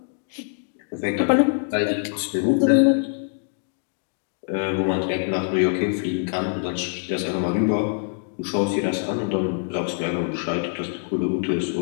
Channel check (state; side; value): silent; right; 63 dB below the other